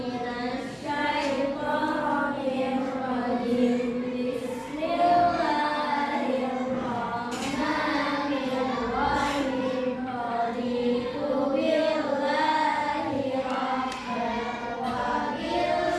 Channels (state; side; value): identical; both; correlation 1.00